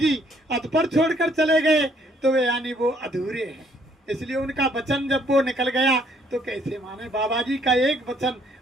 अध पर छोड़कर चले गए तो वे यानी वो अधूरे हैं। इसलिए उनका वचन जब वो निकल गया तो कैसे माने। बाबा जी का एक वचन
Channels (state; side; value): normal; both; correlation 0.65